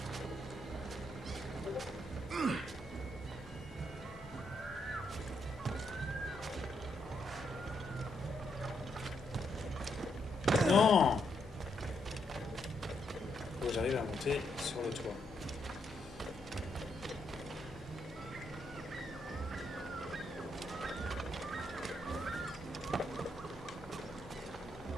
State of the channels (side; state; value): both; normal; correlation 0.77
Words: Non! Faut que j'arrive à monter sur le toit.